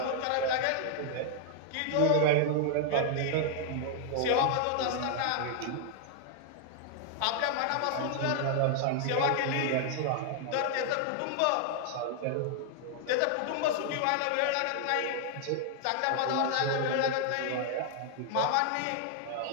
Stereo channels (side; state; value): both; different; correlation 0.00